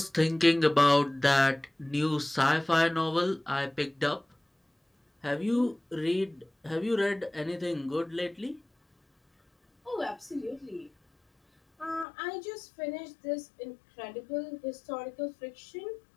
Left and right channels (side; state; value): right; drops out; at 12.1 s